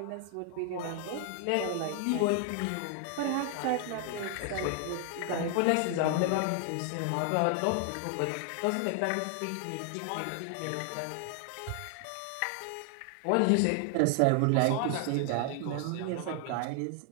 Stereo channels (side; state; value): both; different; correlation 0.00